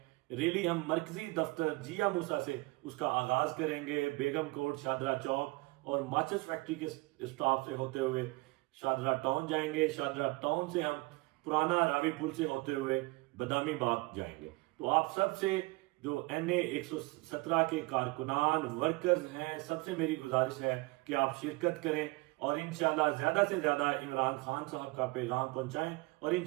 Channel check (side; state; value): left; quieter; 24.4 dB